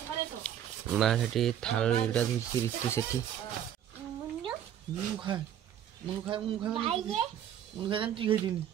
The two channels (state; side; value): quieter; left; 10.2 dB